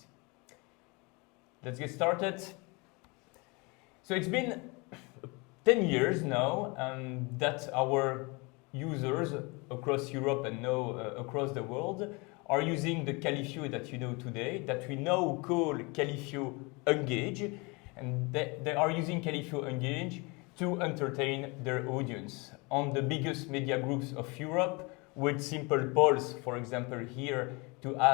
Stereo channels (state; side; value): quieter; right; 28.1 dB